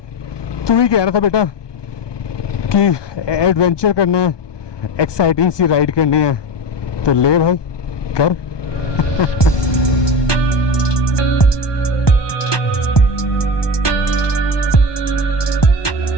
तू ही कह रहा था बेटा कि एडवेंचर करना है, एक्साइटिंग सी राइड करनी है, तो ले भाई कर.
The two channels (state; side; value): late; right; 1.2 ms